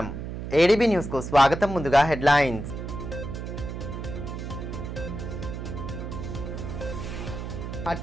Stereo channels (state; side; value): noise; right; hum, 7 dB below the sound